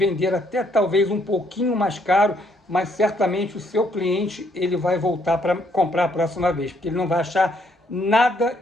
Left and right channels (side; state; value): both; normal; correlation 0.69